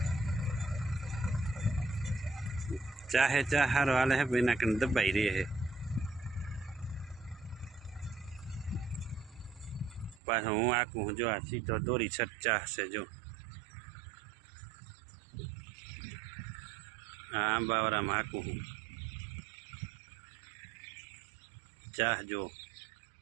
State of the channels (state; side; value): drops out; left; at 10.2 s